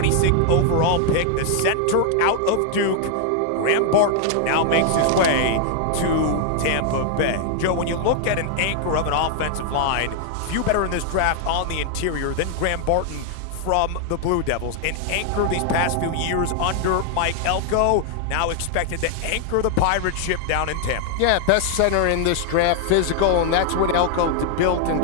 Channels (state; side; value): different; both; correlation 0.00